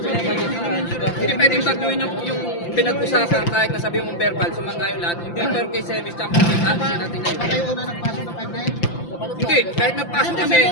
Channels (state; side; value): late; right; 5.8 ms